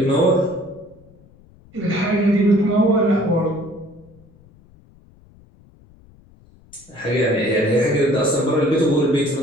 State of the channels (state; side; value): noise; left; rumble, 27 dB below the sound